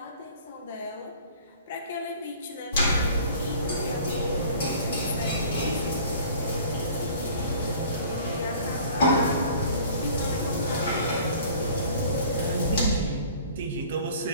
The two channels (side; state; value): both; inverted; correlation -0.48